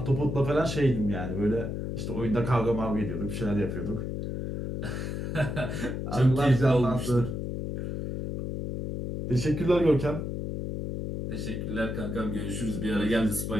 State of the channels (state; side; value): noise; left; hum, 4 dB below the sound